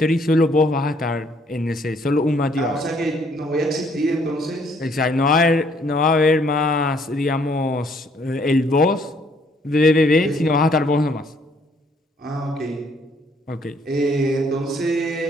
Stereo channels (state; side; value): normal; both; correlation 0.65